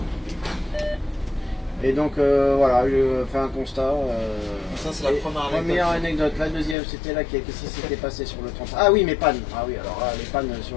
Et donc voilà, je fais un constat. Ça c'est la première anecdote. La deuxième, c'était là qu'est-ce qui s'était passé sur le 30. Ah oui, mes pannes. Ah oui, alors là, les pannes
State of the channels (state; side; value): drops out; right; at 6.8 s